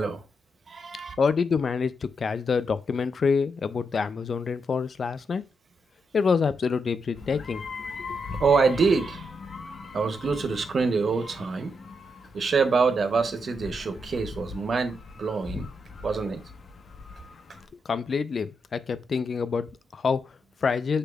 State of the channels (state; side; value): normal; both; correlation 0.82